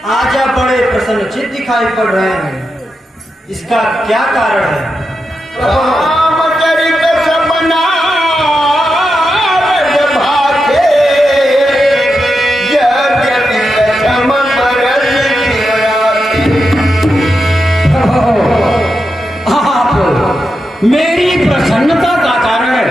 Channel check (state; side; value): normal; both; correlation 0.87